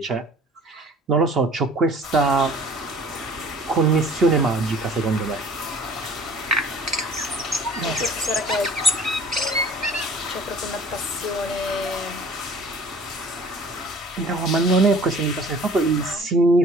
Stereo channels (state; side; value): normal; both; correlation 0.49